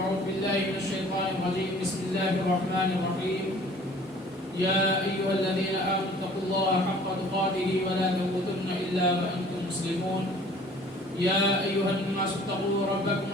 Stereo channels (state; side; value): normal; both; correlation 0.52